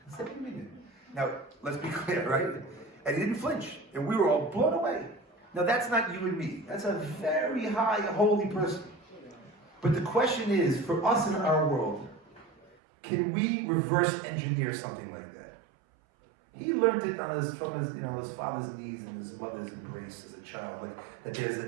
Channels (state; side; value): drops out; left; at 12.8 s